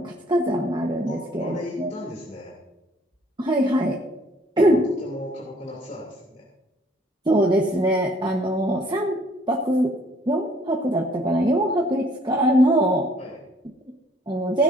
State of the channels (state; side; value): normal; both; correlation 0.60